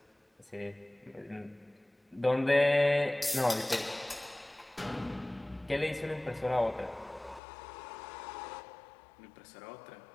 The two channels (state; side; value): drops out; right; at 7.4 s